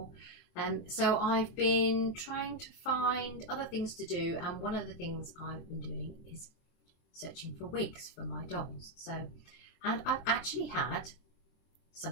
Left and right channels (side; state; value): right; late; 23 ms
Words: So I've been trying to find other things to do, and one of the things I've been doing is searching for wigs for my dolls. And I've actually had